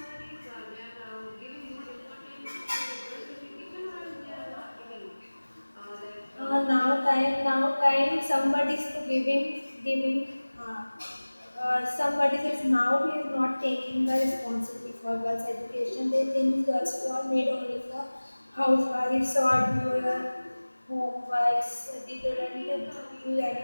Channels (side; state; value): both; inverted; correlation -1.00